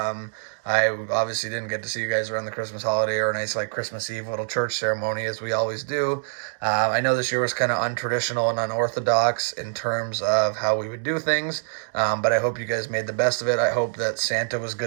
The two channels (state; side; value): silent; left; digital silence